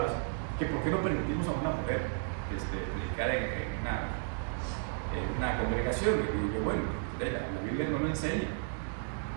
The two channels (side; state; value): left; silent; 55 dB below the other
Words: que por qué no permitimos a una mujer predicar en una congregación. Y yo, bueno, la Biblia no lo enseña,